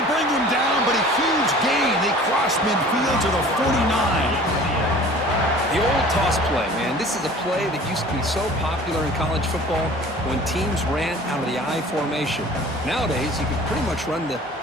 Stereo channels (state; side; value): normal; both; correlation 0.45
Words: bring him down, but a huge gain. They cross midfield to the 49. The old toss play, man. This is a play that used to be so popular in college football when teams ran out of the I formation. Nowadays, you can pretty much run